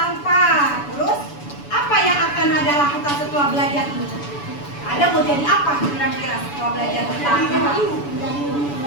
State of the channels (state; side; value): late; right; 7.0 ms